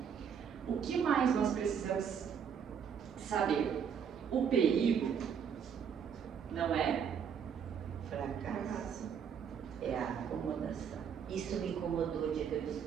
O que mais nós precisamos saber? O perigo não é Fracasso. É a acomodação. Isso me incomodou o dia que eu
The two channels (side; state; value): left; quieter; 7.4 dB